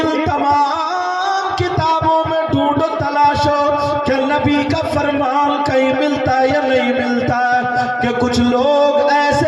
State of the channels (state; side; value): identical; both; correlation 1.00